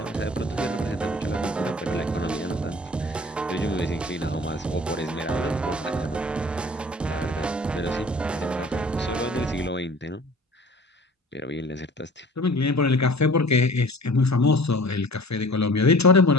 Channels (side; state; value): both; normal; correlation 0.46